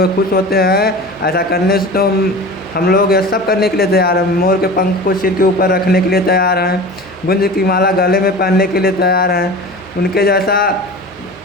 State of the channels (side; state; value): left; noise; hum, 30 dB below the sound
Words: खुश होते हैं ऐसा करने से, तो हम लोग यह सब करने के लिए तैयार हैं। मोर के पंख को सिर के ऊपर रखने के लिए तैयार हैं, गुंज की माला गले में पहनने के लिए तैयार हैं, उनके जैसा